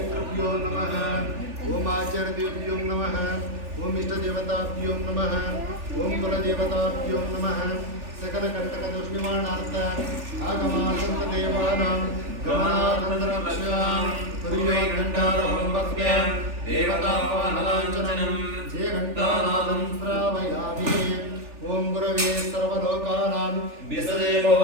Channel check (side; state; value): left; late; 3.4 ms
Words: नमः, ओम आचार्यदेवभ्यो नमः, ओम इष्टदेवताभ्यो नमः, ओम कुलदेवताभ्यो नमः। सकल कंटक दोष निवारणार्थ आगमासंत देवानां गमनानंतरक्षां तुर्यो घंटारहं भक्त्या देवतापानलाञ्छनं जे घंटानादं श्रावयामि। ओम गुरवे सर्वलोकानां विसदे